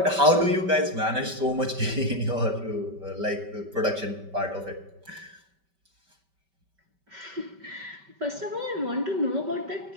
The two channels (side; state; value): left; late; 5.2 ms